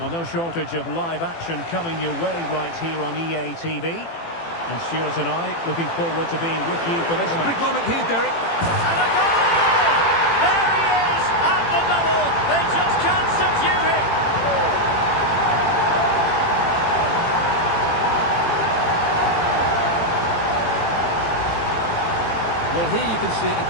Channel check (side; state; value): right; late; 18 ms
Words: no shortage of live action coming your way right here on EA TV. And Stuart and I looking forward to being with you for this match. Big moment here, Derek. And a goal! There he is at the double. They just can't subdue him. Well, here you can see it